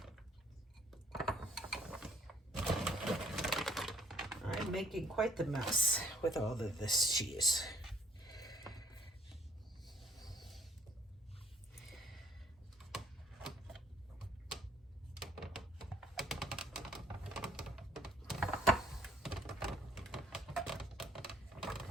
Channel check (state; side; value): normal; both; correlation 0.62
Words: I'm making quite the mess with all of this cheese.